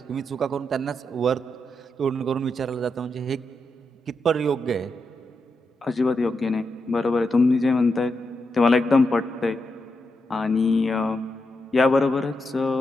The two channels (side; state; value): both; normal; correlation 0.85